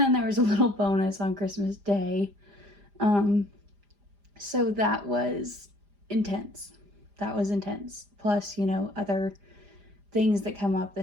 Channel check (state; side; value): late; left; 4.9 ms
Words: there was a little bonus on Christmas Day. So that was intense. Plus, other things that come up